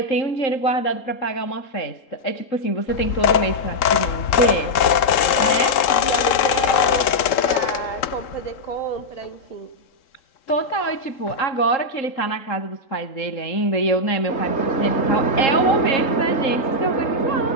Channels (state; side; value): late; right; 3.8 ms